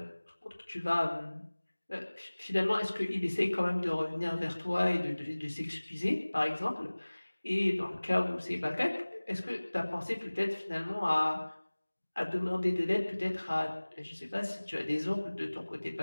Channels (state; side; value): inverted; both; correlation -1.00